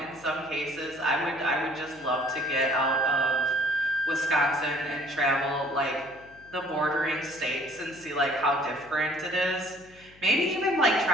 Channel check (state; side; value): noise; left; hum, 25 dB below the sound